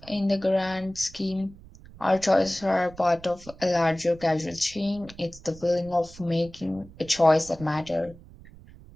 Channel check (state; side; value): noise; right; rumble, 20 dB below the sound